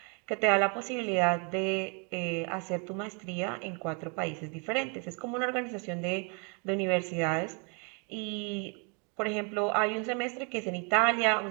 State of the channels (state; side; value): quieter; left; 35.2 dB